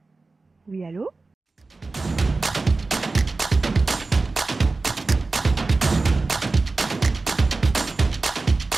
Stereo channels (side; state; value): left; quieter; 3.6 dB